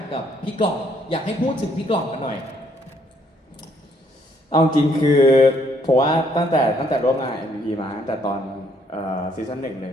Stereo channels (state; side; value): normal; both; correlation 0.68